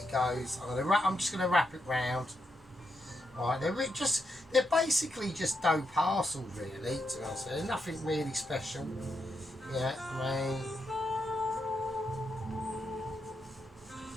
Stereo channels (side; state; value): both; normal; correlation 0.82